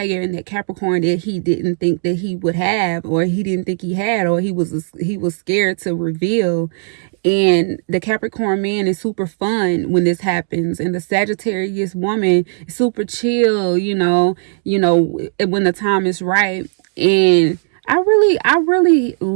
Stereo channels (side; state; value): left; silent; digital silence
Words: and that Capricorn that he didn't think that he would have, or he didn't think he had, or he was scared to reveal. And the Capricorn man is super fun when this happens, and the Sagittarius woman is super chill, you know, when the time is right. And I really